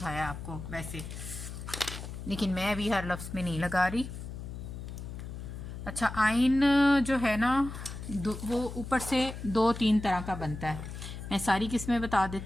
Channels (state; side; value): noise; left; hum, 9 dB below the sound